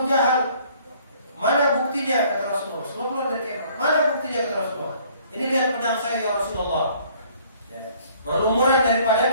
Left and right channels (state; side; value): inverted; both; correlation -0.58